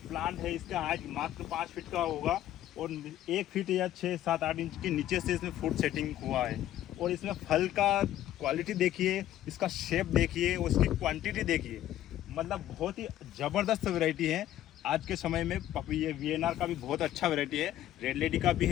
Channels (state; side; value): quieter; right; 12.8 dB